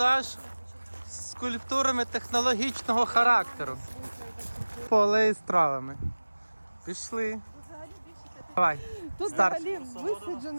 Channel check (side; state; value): both; inverted; correlation -1.00